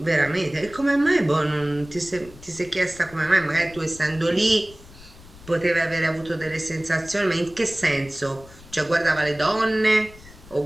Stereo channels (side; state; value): left; noise; rumble, 21 dB below the sound